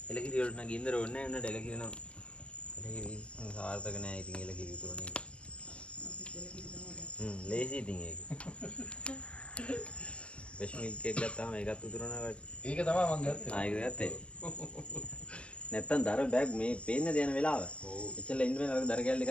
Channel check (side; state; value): right; late; 0.055 ms